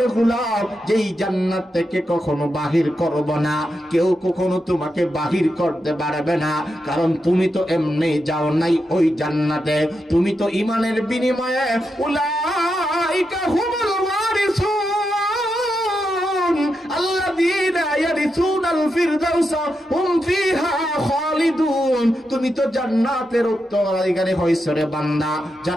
গোলাম, যেই জান্নাত থেকে কখনো বাহির করব না, কেউ কখনো তোমাকে বাহির করতে পারবে না। কারণ তুমি তো এমনি যাও নাই ওই জান্নাতে, তুমি তো ঈমানের বিনিময়ে উলাইকা হুমুল ওয়ারিসুন। আল্লাহ আল্লাযীনা ইয়ারিসুনাল ফিরদাউসা হুম ফিহা খালিদুন। তুমি তো জান্নাতের উত্তরাধিকারী হইছো রে বান্দা,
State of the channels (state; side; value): normal; both; correlation 0.86